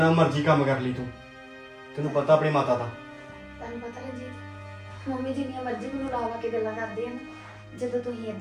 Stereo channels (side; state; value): both; identical; correlation 1.00